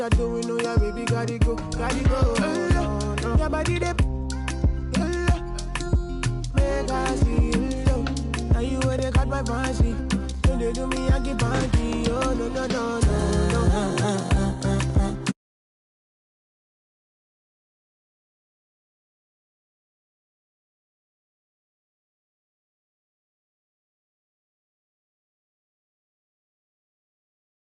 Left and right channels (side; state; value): both; identical; correlation 1.00